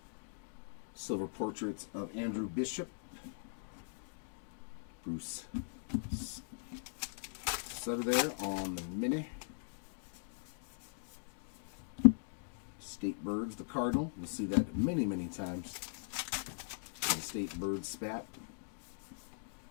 Silver portraits of Andrew Bishop. Bruce Sutter there on the mini. State Birds, the Cardinal. You'll see that many, many times. The State Bird spat.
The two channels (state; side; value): silent; right; digital silence